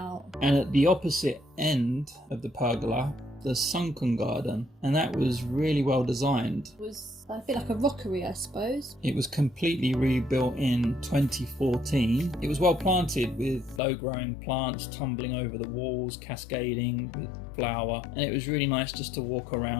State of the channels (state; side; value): drops out; right; at 13.8 s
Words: And at the opposite end of the pergola, the Sunken Garden, and that was really well designed. It was a bit like a rockery, I suppose. It was completely rebuilt in 2014. It was well planted with low-growing plants tumbling over the walls, cascading with flower, and it was really nice just to walk